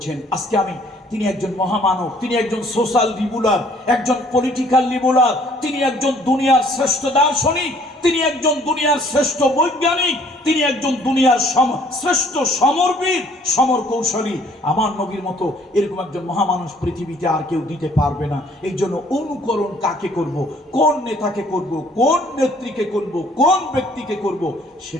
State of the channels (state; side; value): normal; both; correlation 0.59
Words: আজকে তিনি একজন মহামানব, তিনি একজন সোশ্যাল লিবুলার, একজন পলিটিক্যাল লিবুলার, তিনি একজন দুনিয়ার শ্রেষ্ঠ দার্শনিক, তিনি একজন দুনিয়ার শ্রেষ্ঠ বৈজ্ঞানিক, তিনি একজন দুনিয়ার শ্রেষ্ঠ সমরবীর, সমর কৌশলী। আমার নবীর মতো এরকম একজন মহামানুষ পৃথিবীতে আর কেউ দিতে পারবে না। এই জন্য অনুকরণ কাকে করব, কোন নেতাকে করব, কোন নেত্রীকে করব, কোন ব্যক্তিকে করব,